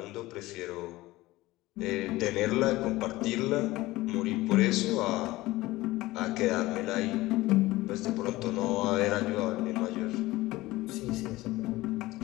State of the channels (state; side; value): quieter; right; 18.6 dB